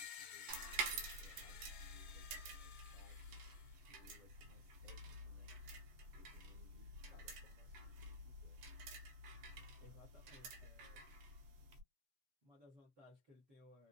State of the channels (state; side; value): late; left; 7.9 ms